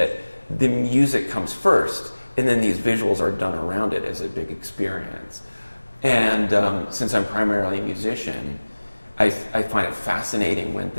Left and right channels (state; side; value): inverted; both; correlation -1.00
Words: the music comes first, and then these visuals are done around it as a big experience. And since I'm primarily a musician, I find it fascinating when